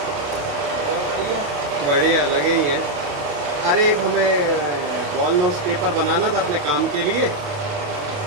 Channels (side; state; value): left; late; 28 ms